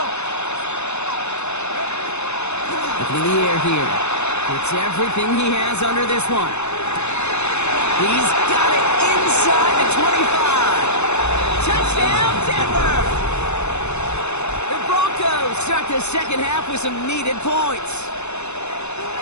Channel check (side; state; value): right; late; 0.81 ms